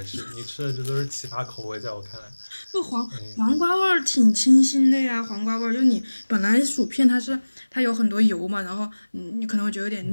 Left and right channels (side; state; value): both; inverted; correlation -1.00